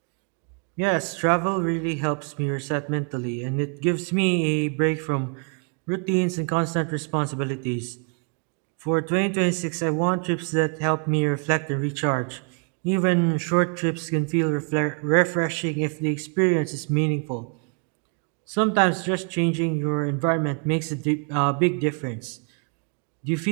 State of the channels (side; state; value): left; quieter; 38.2 dB